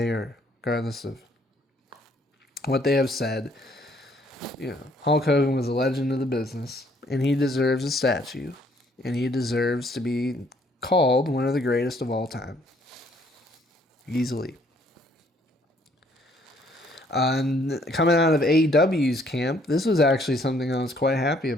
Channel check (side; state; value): both; normal; correlation 0.64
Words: or regardless of what they have said, Hulk Hogan was a legend of the business, and he deserves a statue, and he deserves to be called one of the greatest of all time. Easily. And coming out of AEW's camp, this was actually something I was quite happy